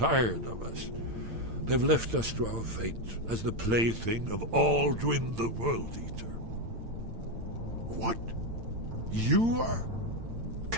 of us. They've left us to our fate as the plaything of Alduin the World Eater. What? You are?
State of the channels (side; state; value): left; late; 8.9 ms